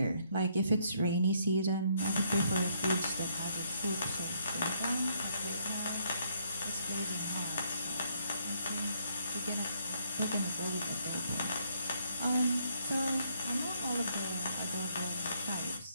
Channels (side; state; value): both; inverted; correlation -0.71